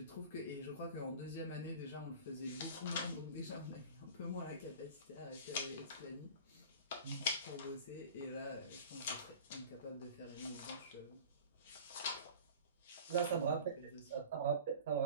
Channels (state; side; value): inverted; both; correlation -0.39